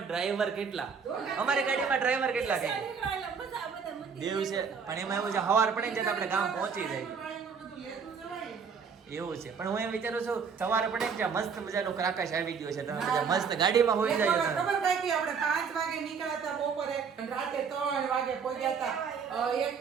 ડ્રાઈવર કેટલા? અમારી ગાડીમાં ડ્રાઈવર કેટલા કે દિવસે? પણ એમાં એવું છે સવાર પડે ને આપણે ગામ પહોંચી જાય એવું છે. પણ હું એમ વિચારું છું સવારે પડે ને મસ્ત મજાનું ક્રાકાશ આવી ગયો છે, તમે બધા મસ્ત ગાડીમાં હોઈ જાય. ખબર થાય કે આપણે 5 વાગે નીકળ્યા હતા બપોરે, રાતે 3 વાગે પહોંચ્યા હતા. એક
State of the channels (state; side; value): quieter; left; 6.1 dB